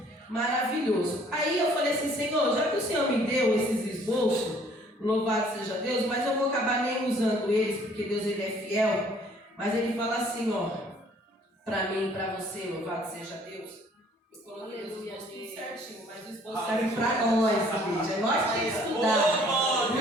maravilhoso. Aí eu falei assim, Senhor, já que o Senhor me deu esses esboços, louvado seja Deus, mas eu vou acabar nem usando eles, porque Deus, ele é fiel. Mas ele fala assim, ó, pra mim e pra você, louvado seja Deus. Eu coloquei os esboços tudo certinho, mas os esboços servem pra nós, igreja. Nós temos que estudar,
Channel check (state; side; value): normal; both; correlation 0.58